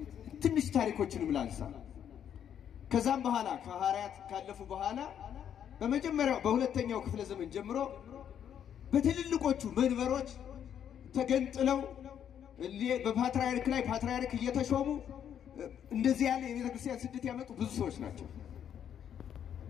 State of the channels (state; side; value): quieter; right; 9.2 dB